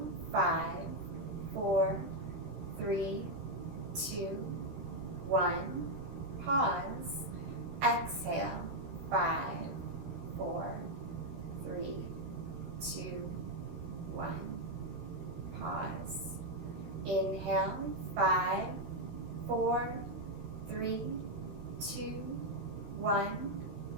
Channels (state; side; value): late; left; 13 ms